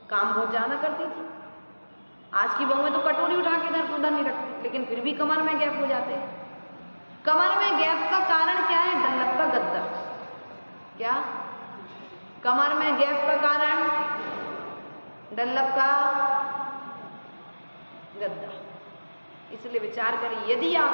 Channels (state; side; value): inverted; both; correlation -1.00